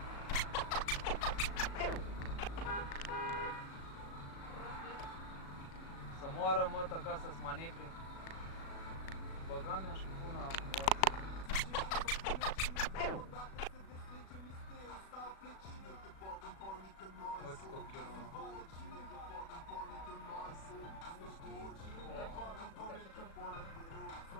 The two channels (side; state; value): right; late; 36 ms